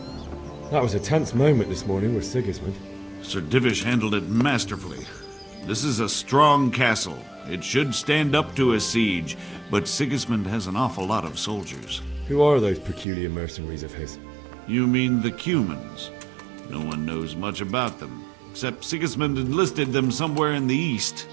That was a tense moment this morning with Sigismund. Sir Divish handled it masterfully. This is a strong castle. It should stand up to a siege, but Sigismund has an awful lot of soldiers. Who are those peculiar mercenaries of his? You mean the Cumans? No one knows much about them, except Sigismund enlisted them somewhere in the east.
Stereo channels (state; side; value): drops out; left; at 13.1 s